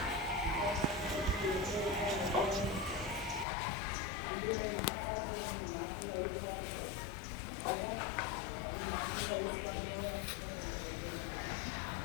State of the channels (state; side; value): drops out; right; at 3.5 s